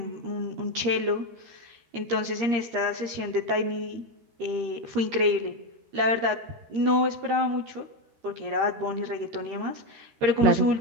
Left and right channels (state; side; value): late; left; 13 ms